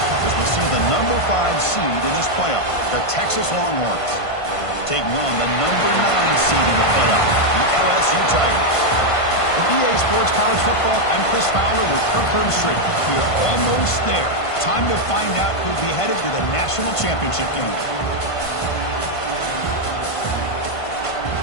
As we see the number 5 seed in this playoff, the Texas Longhorns, taking on the number 9 seed in the playoff, the LSU Tigers. For EA Sports College Football, I'm Chris Fowler with Kirk Herbstreit. We are almost there. Time to find out who'll be headed to the national championship game.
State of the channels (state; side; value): late; right; 1.5 ms